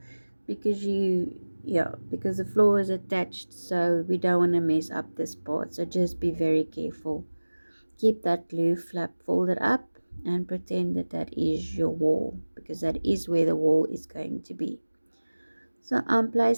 because because the floor is attached, so we don't want to mess up this part. So just be very careful. Keep that glue flap folded up and pretend that that is your wall, because that is where the wall is going to be. So I'm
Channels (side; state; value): both; inverted; correlation -1.00